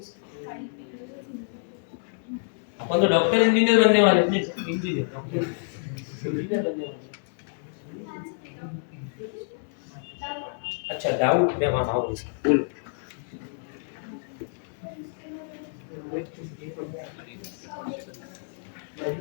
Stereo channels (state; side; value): silent; right; digital silence